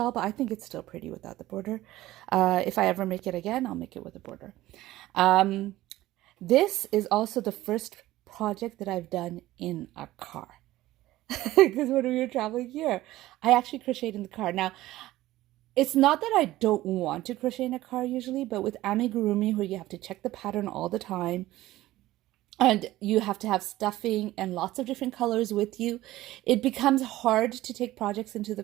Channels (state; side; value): quieter; left; 16.2 dB